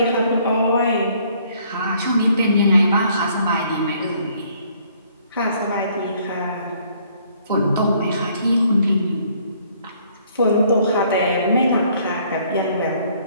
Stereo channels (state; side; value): inverted; both; correlation -0.63